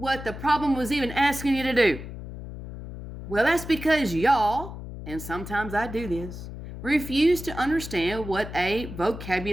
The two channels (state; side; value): noise; left; hum, 10 dB below the sound